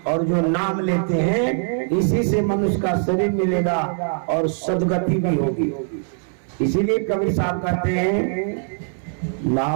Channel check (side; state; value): left; silent; digital silence